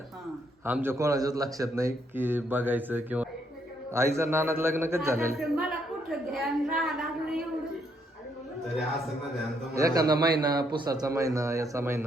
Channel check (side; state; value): both; normal; correlation 0.73